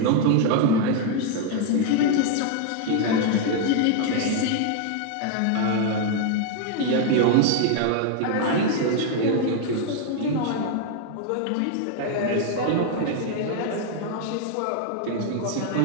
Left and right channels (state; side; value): different; both; correlation 0.00